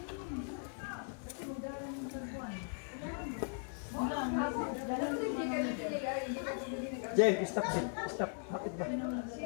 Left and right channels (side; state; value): right; silent; 52 dB below the other